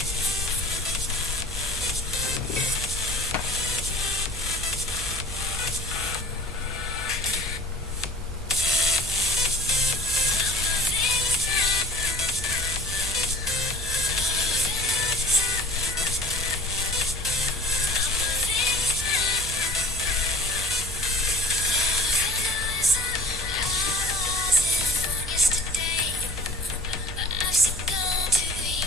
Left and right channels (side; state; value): right; noise; hum, 15 dB below the sound